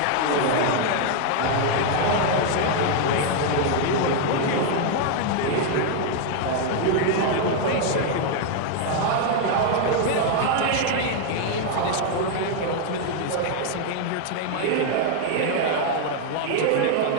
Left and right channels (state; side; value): different; both; correlation 0.00